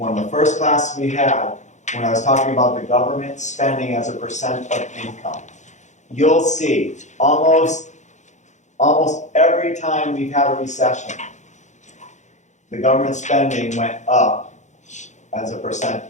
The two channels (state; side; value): late; right; 0.34 ms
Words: of the first classes we had, when I was talking about the government spending as a percent of income, you'll see almost every time we've had a recession, the government spending went up as a percent